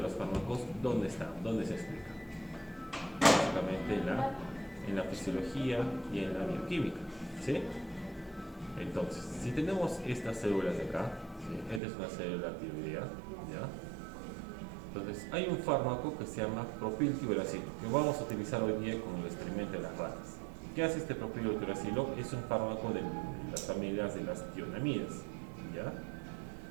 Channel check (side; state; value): left; drops out; at 11.8 s